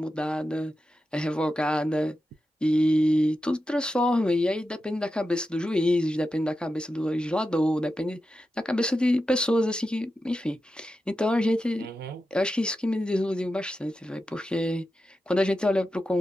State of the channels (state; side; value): normal; both; correlation 0.90